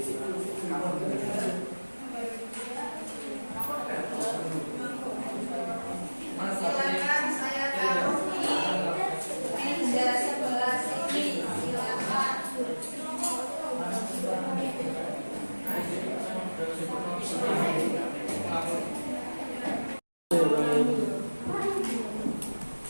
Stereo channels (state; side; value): inverted; both; correlation -1.00